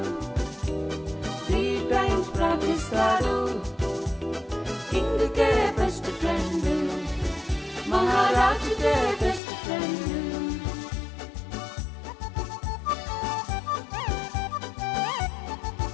3 times ప్రార్థిస్తాడు కింగ్కే బెస్ట్ ఫ్రెండ్ మహారాజుకే బెస్ట్ ఫ్రెండ్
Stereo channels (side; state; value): right; drops out; at 9.4 s